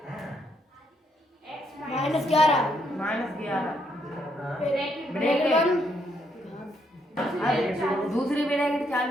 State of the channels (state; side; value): normal; both; correlation 0.74